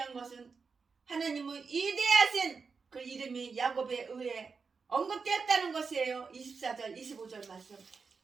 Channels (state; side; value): quieter; left; 5.0 dB